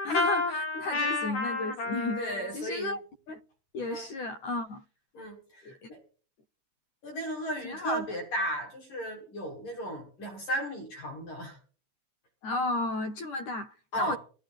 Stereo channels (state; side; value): late; right; 11 ms